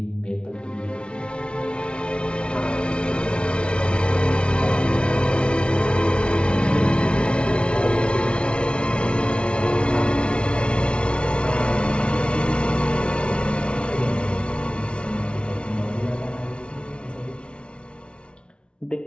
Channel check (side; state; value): right; late; 0.058 ms